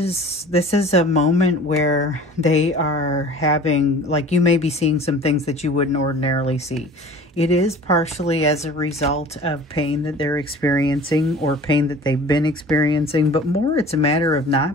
a moment where they are having, like, you may be seeing some things that you wouldn't ordinarily see. It is partially as a result of pain that they're experiencing or pain that they've been experiencing, but more it's a matter of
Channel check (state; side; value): normal; both; correlation 0.44